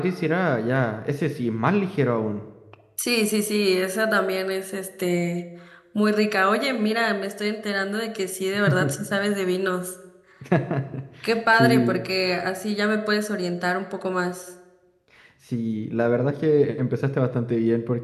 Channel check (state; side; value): identical; both; correlation 1.00